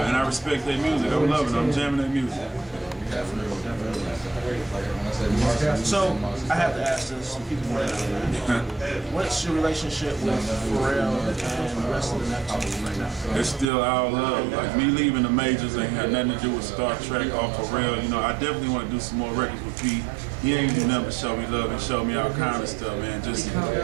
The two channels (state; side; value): drops out; left; at 13.7 s